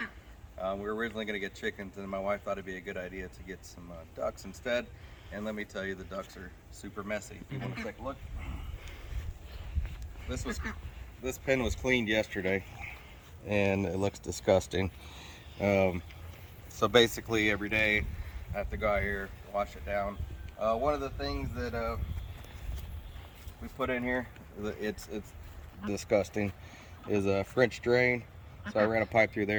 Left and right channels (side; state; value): both; identical; correlation 1.00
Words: We were originally going to get chickens, and my wife thought it'd be a good idea to get some ducks instead. And let me tell you, the ducks are super messy. If you want to take a look, this pen was cleaned yesterday, and it looks disgusting. So basically, every day I have to go out here, wash it down. One of the things that we put in here, it's disgusting, is a French drain. So I ran a pipe through